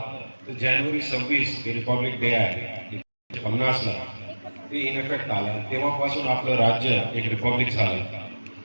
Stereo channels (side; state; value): both; inverted; correlation -1.00